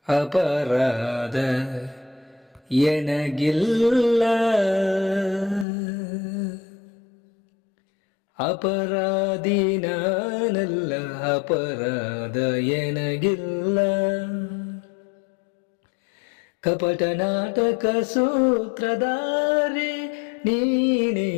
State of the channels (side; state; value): right; drops out; at 5.7 s